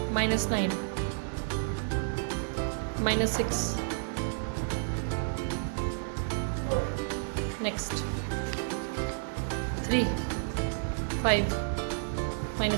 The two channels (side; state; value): left; silent; digital silence